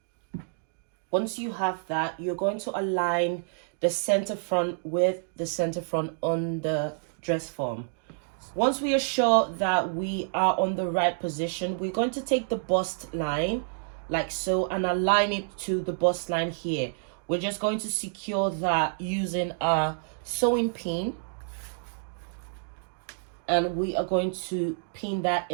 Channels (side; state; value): left; silent; digital silence